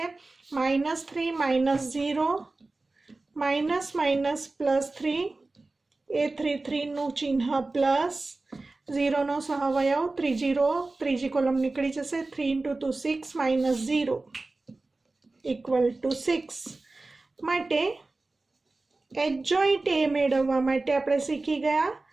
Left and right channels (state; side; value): quieter; left; 3.3 dB